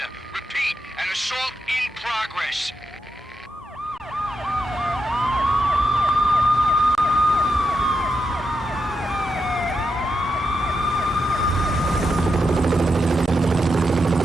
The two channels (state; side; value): normal; both; correlation 0.85